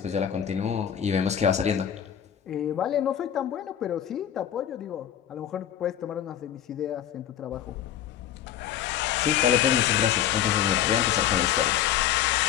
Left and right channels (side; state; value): right; quieter; 10.2 dB